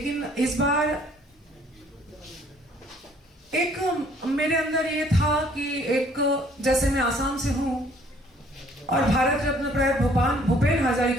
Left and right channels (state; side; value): normal; both; correlation 0.60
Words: इस बार एक मेरे अंदर ये था कि एक जैसे मैं आसाम से हूँ और भारत रत्न प्रयात भूपेन